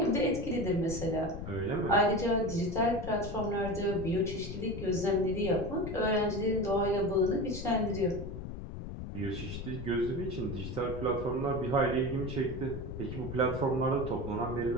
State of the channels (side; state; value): left; noise; rumble, 8 dB below the sound